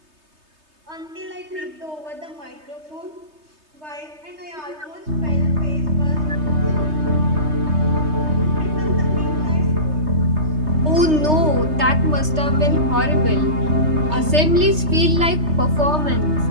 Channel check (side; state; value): left; late; 3.3 ms